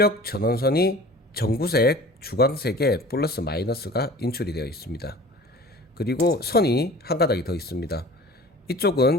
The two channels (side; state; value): both; normal; correlation 0.43